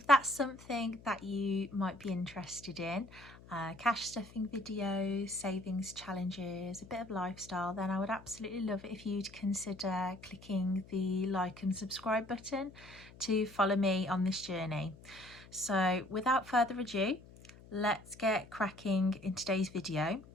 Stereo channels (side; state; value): left; noise; hum, 20 dB below the sound